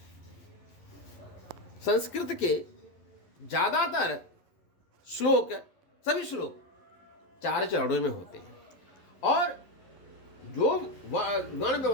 संस्कृत के ज्यादातर श्लोक, सभी श्लोक 4 चरणों में होते हैं, और जो गण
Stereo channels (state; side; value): late; right; 12 ms